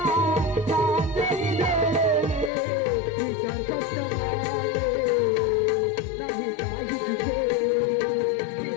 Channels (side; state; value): right; drops out; at 2.5 s